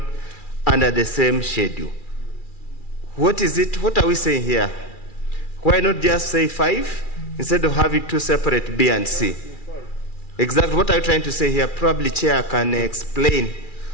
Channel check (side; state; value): right; late; 2.4 ms